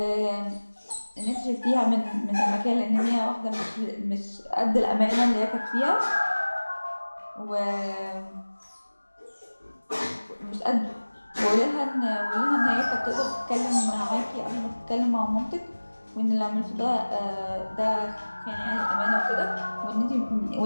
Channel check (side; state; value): both; inverted; correlation -1.00